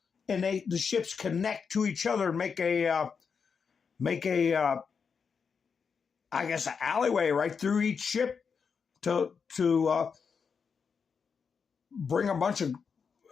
and the ships connect to each other and make a I guess an alleyway right through each ship to bring a bunch of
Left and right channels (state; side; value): quieter; right; 6.0 dB